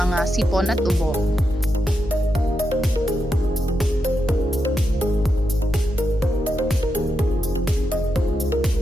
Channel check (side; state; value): both; normal; correlation 0.86